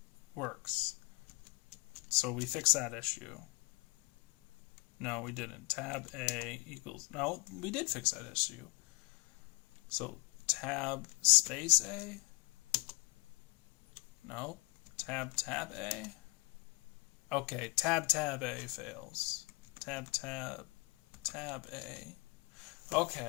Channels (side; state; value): right; quieter; 26.0 dB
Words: works. So we fix that issue. No, we didn't. Tab A equals... No, we did fix that issue. So tab space A? No. Tab A? Okay, tab A fails. Tab A.